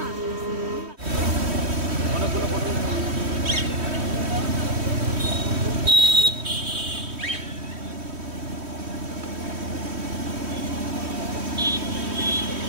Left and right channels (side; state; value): left; late; 3.1 ms